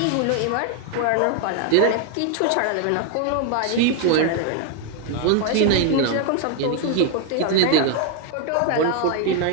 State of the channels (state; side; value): different; both; correlation 0.00